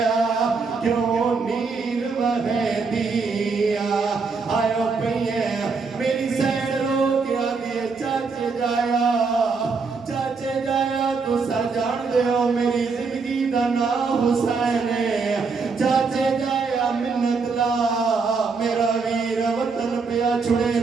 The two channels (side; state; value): left; quieter; 4.7 dB